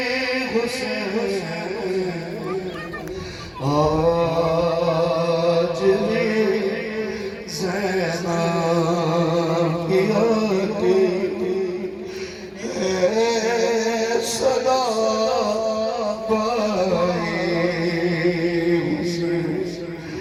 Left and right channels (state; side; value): identical; both; correlation 1.00